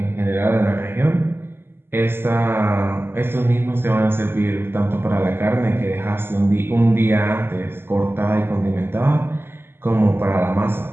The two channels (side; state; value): left; late; 0.11 ms